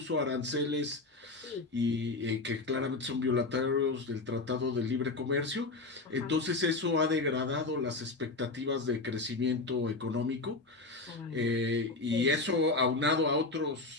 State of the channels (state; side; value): quieter; right; 3.4 dB